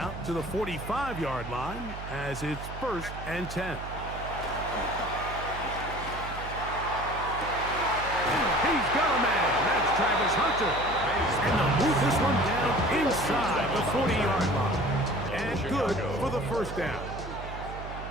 to the 45-yard line as it's 1st and 10. He's got a man. That's Travis Hunter. And they'll move this one down inside the 40-yard line. And good for the 1st down.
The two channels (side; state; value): right; noise; hum, 10 dB below the sound